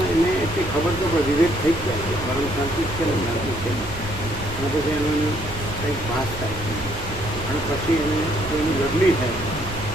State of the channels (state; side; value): noise; right; hum, 14 dB below the sound